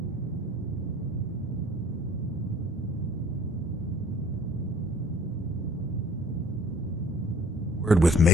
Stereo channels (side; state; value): both; normal; correlation 0.51